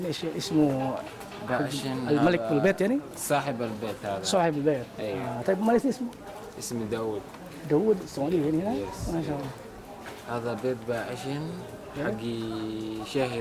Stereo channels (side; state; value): both; identical; correlation 1.00